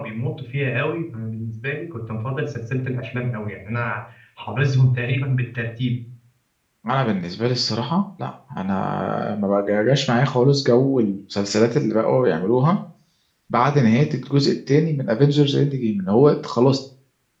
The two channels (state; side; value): identical; both; correlation 1.00